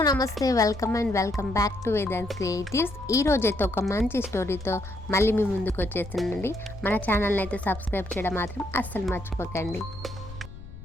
నమస్తే welcome back to Vedant creatives. ఈ రోజైతే ఒక మంచి స్టోరీతో మళ్ళీ మీ ముందుకు వచ్చేసిందండి. మన ఛానల్ని అయితే సబ్స్క్రైబ్ చేయడం మాత్రం అస్సలు మర్చిపోకండి.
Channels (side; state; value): left; noise; rumble, 14 dB below the sound